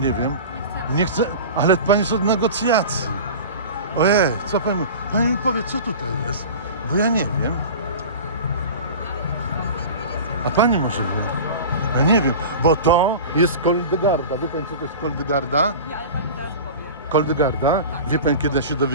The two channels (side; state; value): both; inverted; correlation -0.34